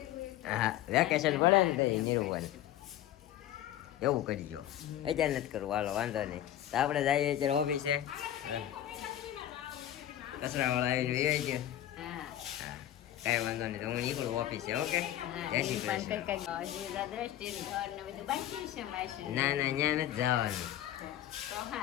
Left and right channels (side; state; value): right; quieter; 12.4 dB